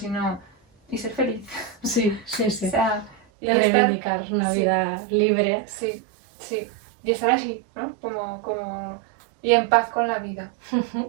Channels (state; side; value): drops out; left; at 3.2 s